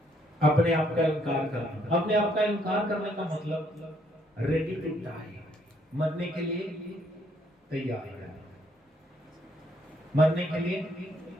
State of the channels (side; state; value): both; normal; correlation 0.69